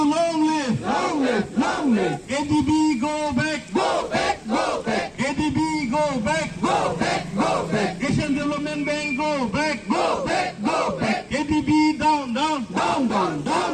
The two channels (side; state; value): both; identical; correlation 1.00